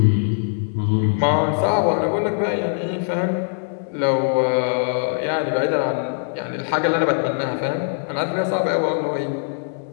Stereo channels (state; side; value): silent; right; 64 dB below the other